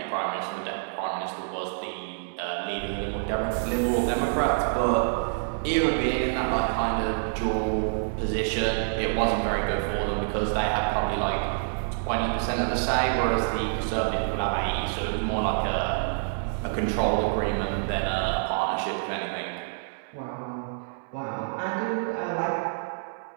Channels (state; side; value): silent; left; digital silence